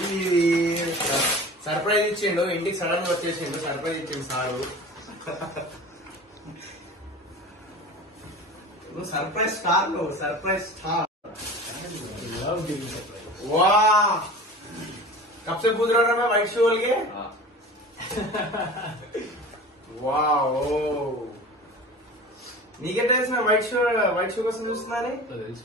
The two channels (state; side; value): normal; both; correlation 0.37